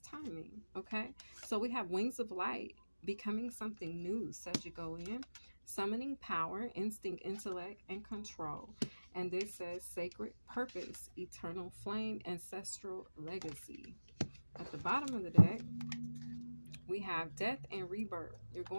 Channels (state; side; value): inverted; both; correlation -1.00